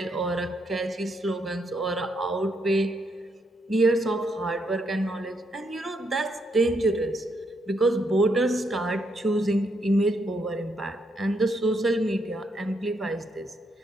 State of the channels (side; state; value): both; normal; correlation 0.77